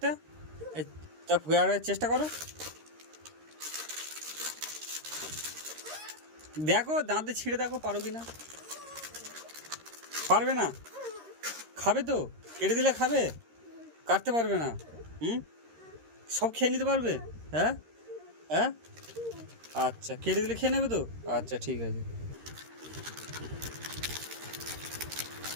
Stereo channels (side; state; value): left; late; 13 ms